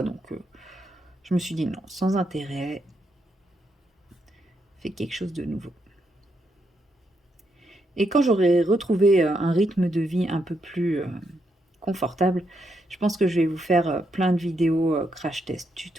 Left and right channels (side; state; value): both; normal; correlation 0.80